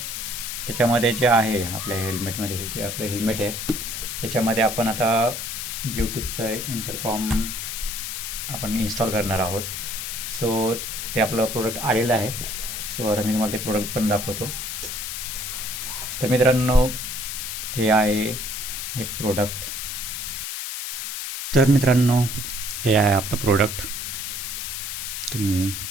त्याच्यामध्ये जे आहे आपल्या हेल्मेटमध्ये हे जे आपलं हेल्मेट आहे त्याच्यामध्ये आपण आता ब्ल्यूटूथचं इंटरकॉम आपण इन्स्टॉल करणार आहोत. सो ते आपलं प्रोडक्ट आलेलं आहे. सो आता मी तुम्हाला ते प्रोडक्ट पण दाखवतो. तर मित्रांनो हे आहे एक प्रोडक्ट. तर मित्रांनो हे आहे आपलं प्रोडक्ट, तुम्ही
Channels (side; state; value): left; noise; hiss, 5 dB below the sound